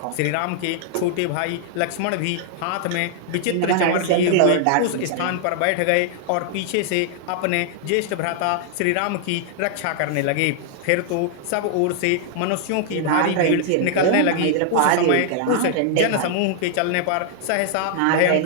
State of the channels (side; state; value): both; different; correlation -0.01